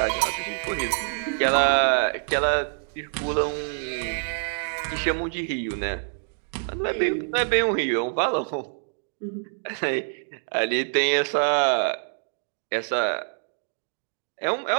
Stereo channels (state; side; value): silent; left; digital silence